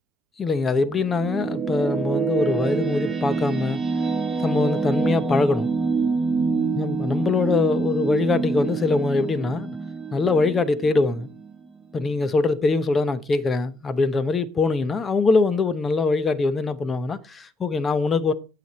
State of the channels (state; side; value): normal; both; correlation 0.76